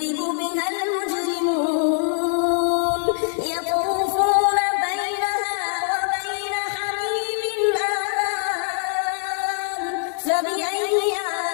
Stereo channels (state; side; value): silent; right; 55 dB below the other